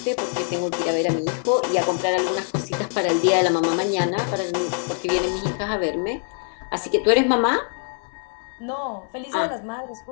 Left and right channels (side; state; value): right; silent; 62 dB below the other